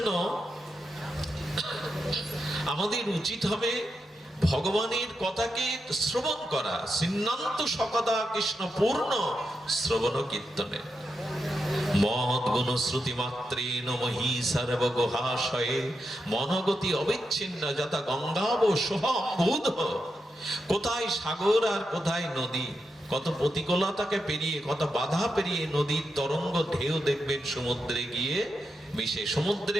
আমাদের উচিত হবে ভগবানের কথাকে শ্রবণ করা। সিন্নান্ত সকদা কৃষ্ণ পূর্ণ শ্রবণ কীর্তনে মহৎ গুণ শ্রুতি মাত্রেণ মহি সর্ব গুহাশয়ে মনগতি অবিচ্ছিন্ন যথা গঙ্গাব সোহম্বুধ। কোথায় সাগর আর কোথায় নদী, কত প্রতিকূলতাকে পেরিয়ে, কত বাধা পেরিয়ে নদীর তরঙ্গ ঢেউ দেখবেন সমুদ্রে গিয়ে মিশে। সমুদ্রে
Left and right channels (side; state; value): both; normal; correlation 0.86